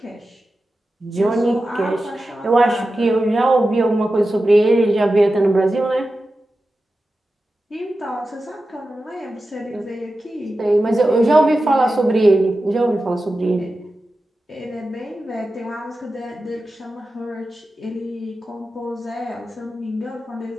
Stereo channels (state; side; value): normal; both; correlation 0.93